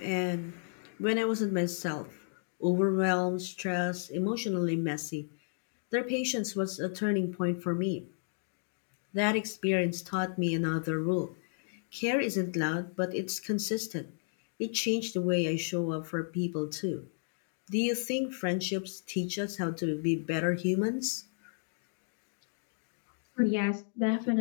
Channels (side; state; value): right; silent; digital silence